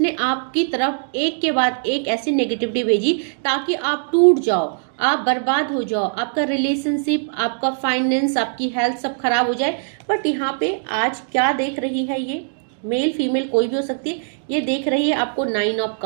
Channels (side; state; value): left; silent; digital silence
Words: आपकी तरफ एक के बाद एक ऐसी नेगेटिविटी भेजी ताकि आप टूट जाओ, आप बर्बाद हो जाओ, आपका रिलेशनशिप, आपका फाइनेंस, आपकी हेल्थ सब खराब हो जाए। बट यहाँ पे आज क्या देख रही है, ये मेल फीमेल कोई भी हो सकती है, ये देख रही है आपको 9 ऑफ